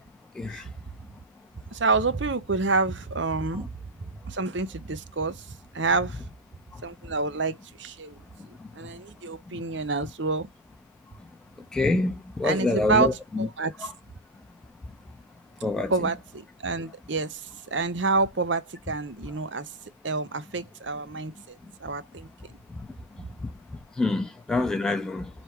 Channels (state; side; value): normal; both; correlation 0.05